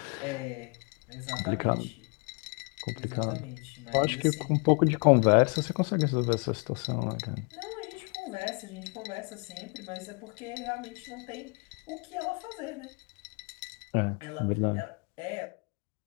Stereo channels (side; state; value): right; quieter; 33.6 dB